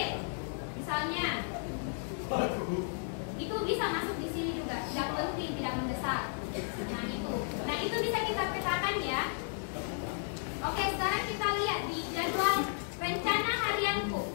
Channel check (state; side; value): silent; right; digital silence